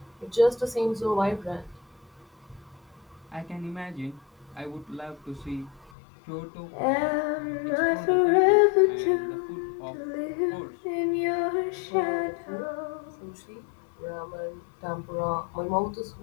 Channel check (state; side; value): drops out; right; at 5.9 s